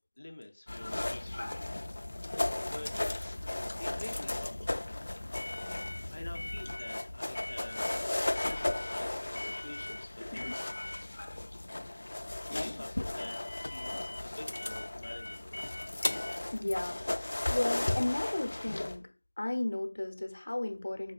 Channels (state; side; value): inverted; both; correlation -1.00